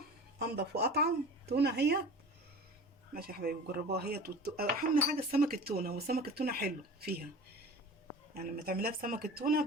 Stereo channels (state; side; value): normal; both; correlation 0.38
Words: انضف واطعم تونه هي. ماشي يا حبايبي جربوها هي. اهم حاجه السمك التونه، وسمك التونه حلو فيها يعني. لما تعمليها بسمك التونه